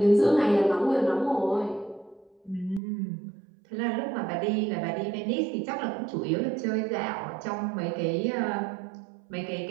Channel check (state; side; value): drops out; left; at 2.8 s